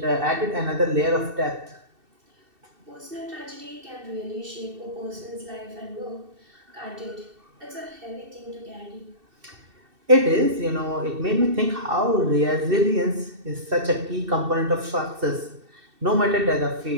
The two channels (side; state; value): left; late; 2.7 ms